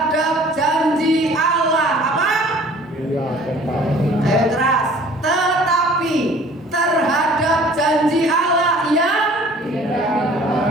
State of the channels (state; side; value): normal; both; correlation 0.51